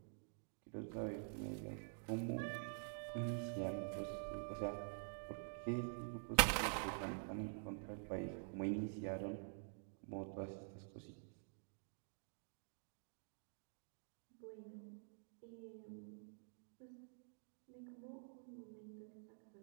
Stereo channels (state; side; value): silent; left; digital silence